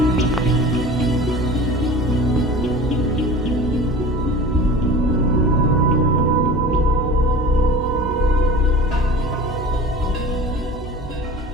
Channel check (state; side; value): normal; both; correlation 0.37